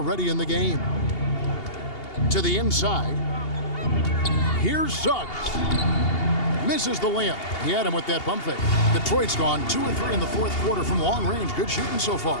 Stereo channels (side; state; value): right; late; 2.8 ms